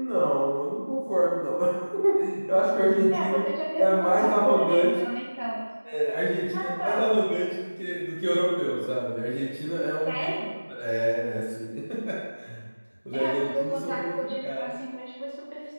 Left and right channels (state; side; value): inverted; both; correlation -1.00